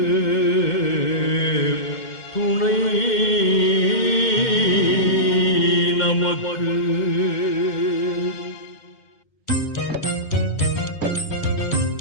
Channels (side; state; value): right; late; 2.0 ms